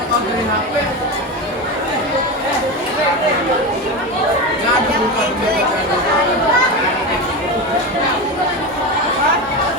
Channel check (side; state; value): both; normal; correlation 0.20